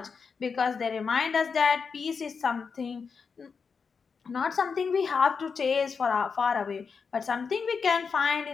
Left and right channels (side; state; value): right; quieter; 5.5 dB